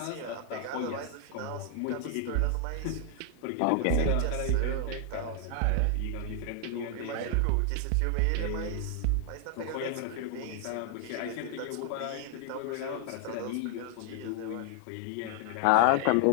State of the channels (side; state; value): both; different; correlation 0.00